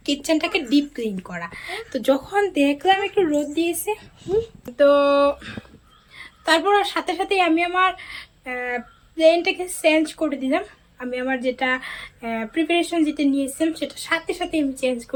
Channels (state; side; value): identical; both; correlation 1.00